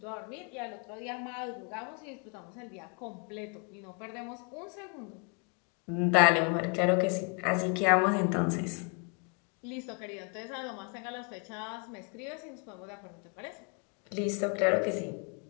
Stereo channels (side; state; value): right; quieter; 37.3 dB